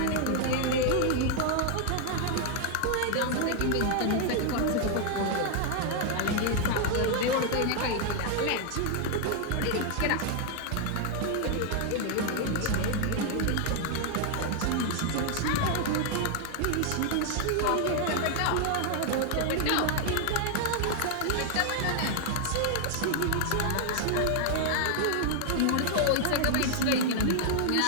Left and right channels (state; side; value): different; both; correlation 0.00